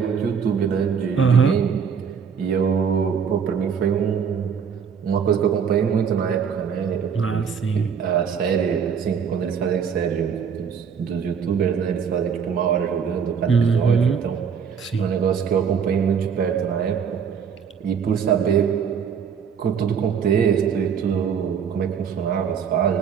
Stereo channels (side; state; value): left; quieter; 6.9 dB